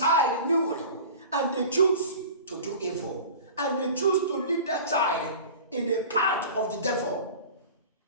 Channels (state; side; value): inverted; both; correlation -0.38